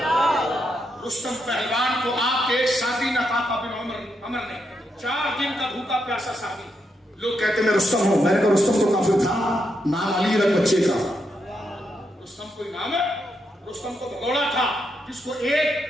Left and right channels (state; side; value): normal; both; correlation 0.81